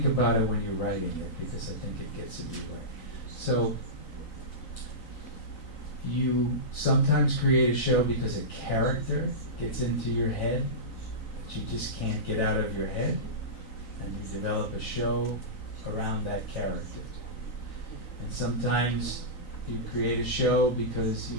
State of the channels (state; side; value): late; right; 3.9 ms